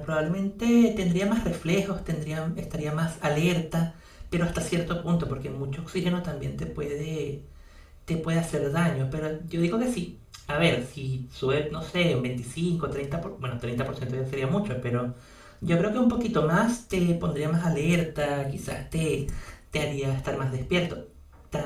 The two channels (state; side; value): identical; both; correlation 1.00